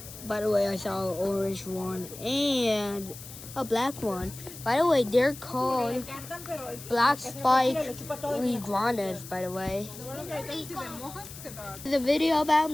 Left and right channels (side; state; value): left; noise; hiss, 14 dB below the sound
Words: By the way, I saw an orange one and a black one. By the way, they're called black spike iguanas, by the way. It's a video about